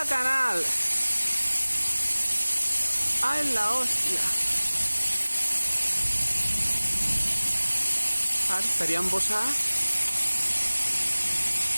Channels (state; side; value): inverted; both; correlation -1.00